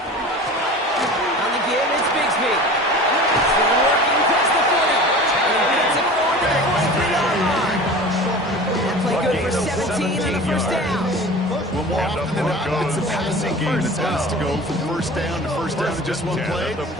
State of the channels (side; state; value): both; normal; correlation 0.38